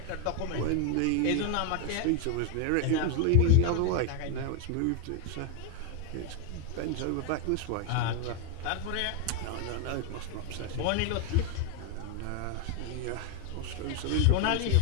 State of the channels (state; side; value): different; both; correlation 0.01